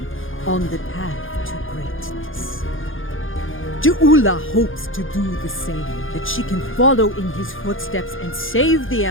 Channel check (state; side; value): late; right; 0.59 ms